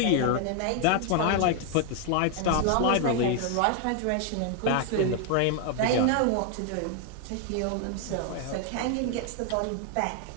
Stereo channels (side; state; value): both; different; correlation 0.00